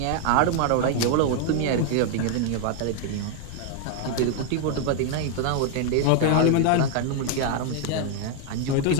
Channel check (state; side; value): different; both; correlation 0.00